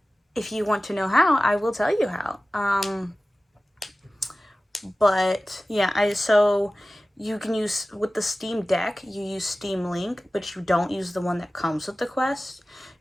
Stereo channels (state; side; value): normal; both; correlation 0.96